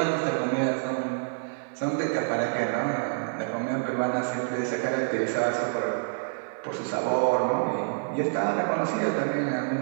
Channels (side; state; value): left; silent; 58 dB below the other